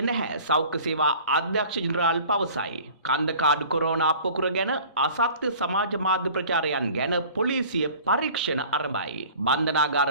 නැහැ සෞඛ්‍ය සේවා අධ්‍යක්ෂ ජෙනරාල් පවසයි. කන්දකාඩු කොරෝනා පොකුර ගැන අසත්‍ය සමාජ මාධ්‍ය ප්‍රචාරයන් ගැන පොලිසිය පරීක්ෂණ ආරම්භයි. බන්ධනාගාර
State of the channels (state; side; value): inverted; both; correlation -0.45